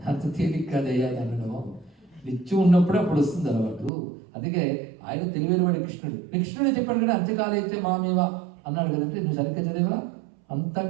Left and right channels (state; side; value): drops out; left; at 3.9 s